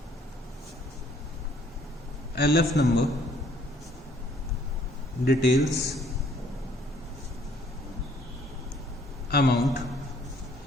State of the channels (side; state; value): both; normal; correlation 0.61